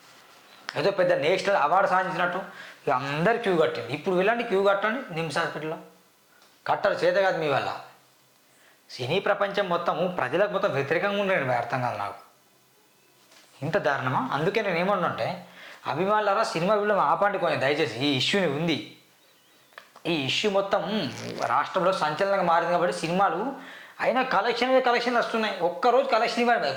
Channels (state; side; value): identical; both; correlation 1.00